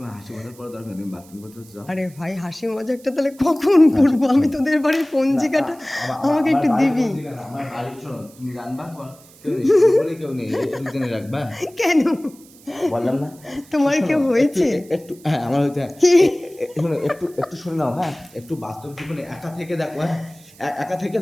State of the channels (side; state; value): right; noise; hiss, 25 dB below the sound